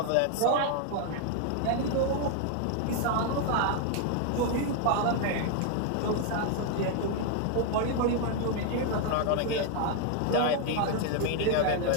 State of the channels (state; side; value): different; both; correlation 0.00